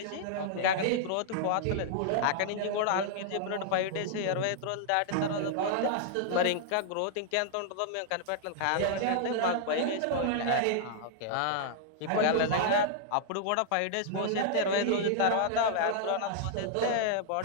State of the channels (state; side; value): different; both; correlation -0.01